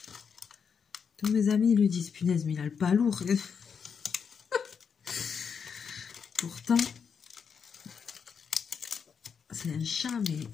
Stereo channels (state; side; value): quieter; right; 6.5 dB